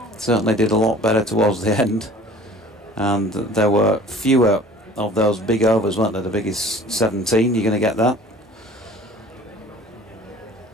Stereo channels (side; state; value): both; normal; correlation 0.47